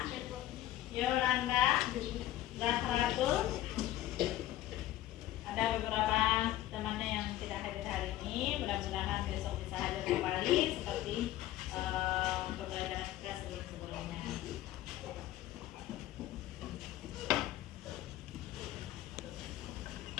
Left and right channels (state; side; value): quieter; right; 14.2 dB